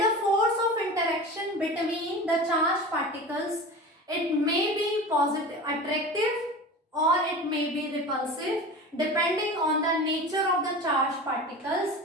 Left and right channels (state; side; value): normal; both; correlation 0.33